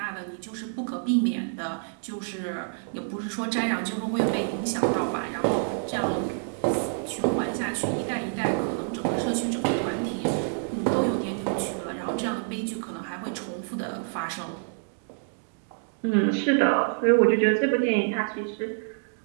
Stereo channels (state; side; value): silent; left; digital silence